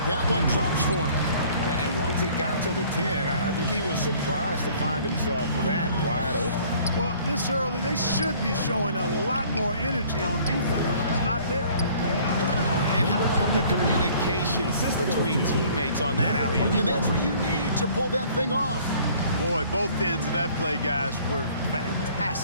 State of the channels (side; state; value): both; inverted; correlation -0.55